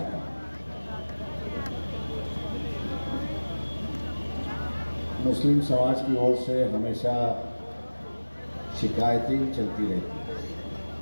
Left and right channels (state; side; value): inverted; both; correlation -1.00